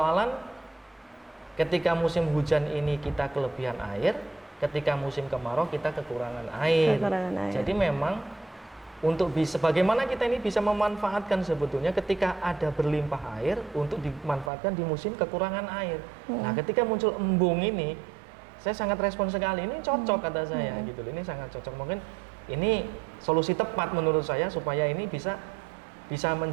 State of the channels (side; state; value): left; drops out; at 14.5 s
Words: ketika musim hujan ini kita kelebihan air, ketika musim kemarau kita kekurangan air. Jadi memang untuk bagaimana kita ini bisa memanfaatkan sebetulnya ketika ada berlimpah air untuk dimanfaatkan di musim kekurangan air. Nah, ketika muncul embung ini saya sangat respon sekali, ini cocok kata saya gitu, ini sangat cocok. Mungkin ini solusi tepat menurut saya supaya ini bisa